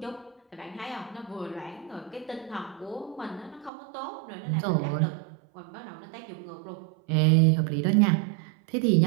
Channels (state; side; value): drops out; left; at 3.7 s